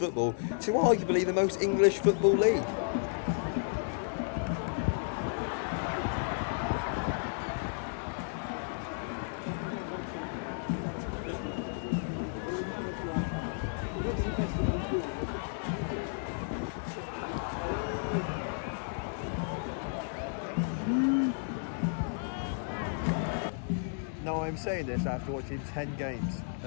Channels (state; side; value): silent; right; digital silence